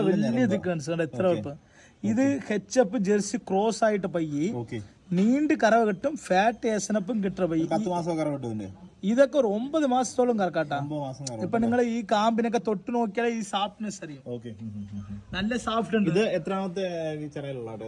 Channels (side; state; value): both; identical; correlation 1.00